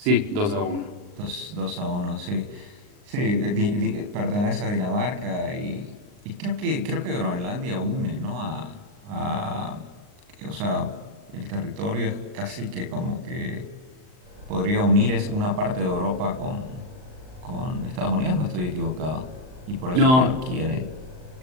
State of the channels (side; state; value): left; late; 39 ms